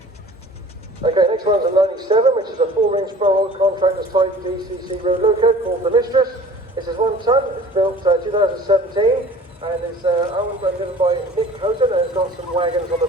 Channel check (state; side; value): normal; both; correlation 0.46